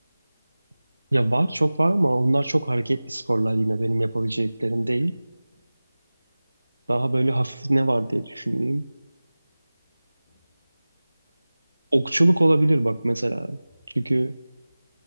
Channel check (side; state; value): both; inverted; correlation -0.99